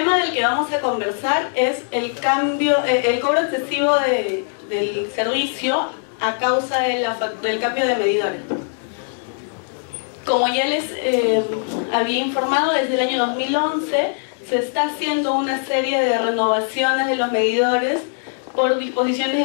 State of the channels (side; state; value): right; silent; 65 dB below the other